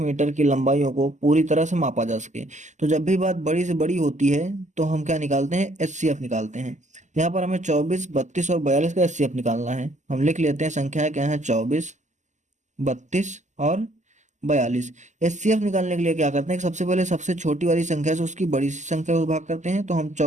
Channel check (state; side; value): late; left; 0.34 ms